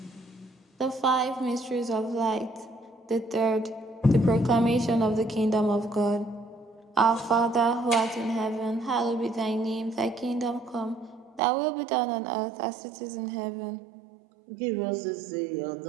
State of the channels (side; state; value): left; drops out; at 11.4 s